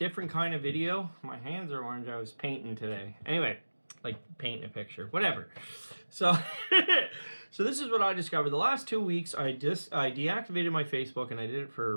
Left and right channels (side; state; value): both; inverted; correlation -1.00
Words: kind of video. My hands are orange, I was painting today. Anyway, like painting a picture, whatever. So, so this is what I discovered. The last 2 weeks, I deactivated my Facebook and I did it for a